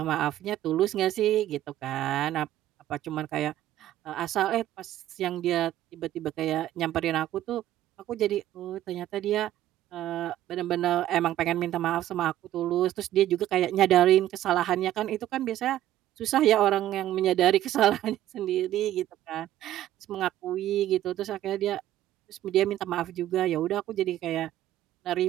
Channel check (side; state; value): left; quieter; 13.2 dB